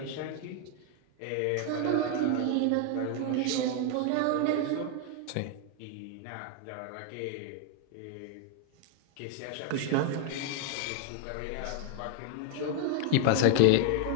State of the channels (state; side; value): different; both; correlation 0.00